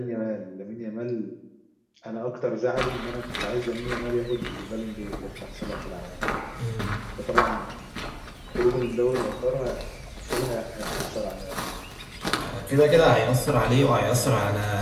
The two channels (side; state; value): both; identical; correlation 1.00